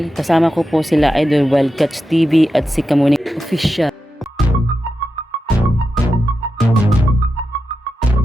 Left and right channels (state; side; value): normal; both; correlation 0.90